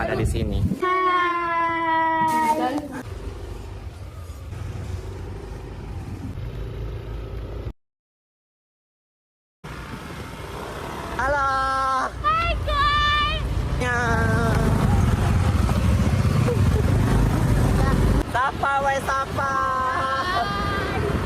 di sini. Hai.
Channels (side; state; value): both; identical; correlation 1.00